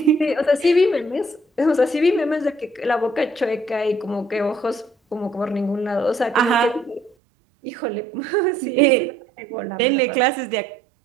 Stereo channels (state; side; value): drops out; left; at 7.2 s